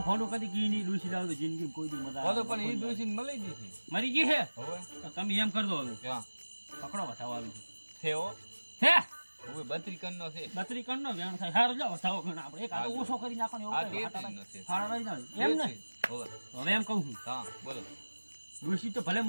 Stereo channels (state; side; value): inverted; both; correlation -1.00